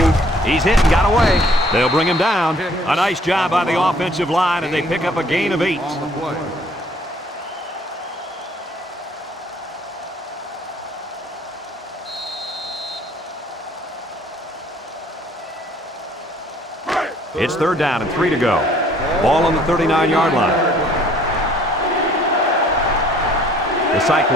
He's hit and got away. They'll bring him down. A nice job by the offensive line, and they pick up a gain of 8. On the play. It's 3rd down and 3 to go. Ball on the 39-yard line. The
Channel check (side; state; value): both; normal; correlation 0.59